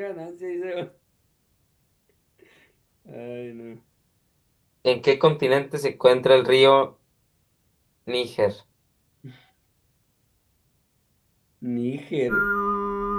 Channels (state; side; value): identical; both; correlation 1.00